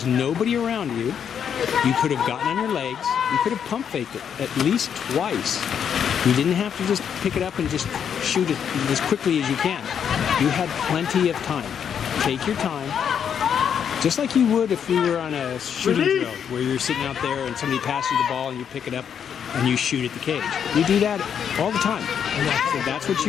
nobody around you. You could have gotten on your legs. You could have pump faked it at least twice. You didn't have to just pick it up and just shoot it as quickly as you can. You had plenty of time. Take your time. Just like you would if we were on a shooting drill where you're sitting out there and somebody passes you the ball and you pick it up and you shoot at the cage. You do that all the time. And that's what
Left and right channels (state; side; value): quieter; right; 8.0 dB